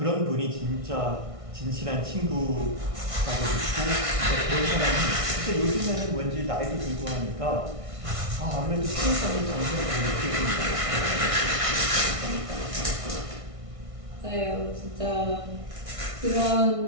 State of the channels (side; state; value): left; late; 1.6 ms